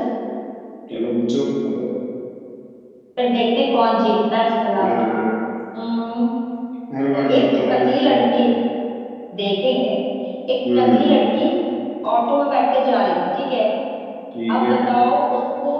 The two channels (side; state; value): both; identical; correlation 1.00